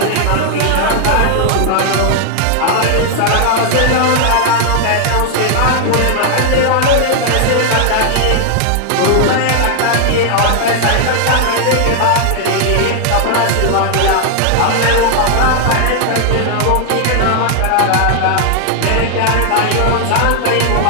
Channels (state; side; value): different; both; correlation 0.00